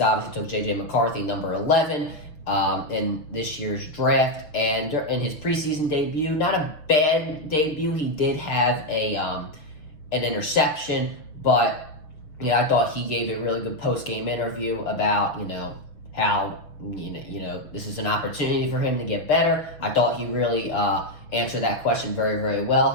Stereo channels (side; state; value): right; late; 6.8 ms